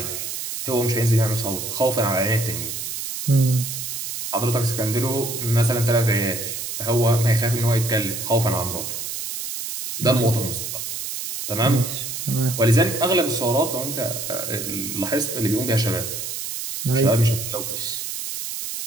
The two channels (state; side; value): noise; right; hiss, 5 dB below the sound